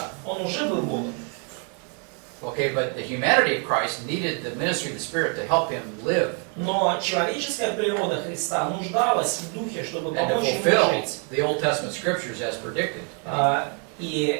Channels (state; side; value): quieter; left; 39.1 dB